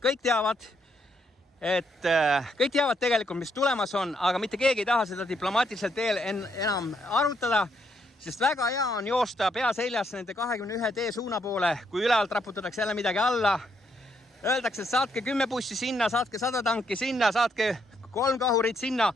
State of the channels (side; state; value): both; normal; correlation 0.75